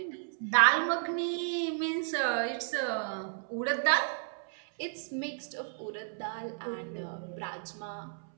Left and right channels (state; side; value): silent; left; 56 dB below the other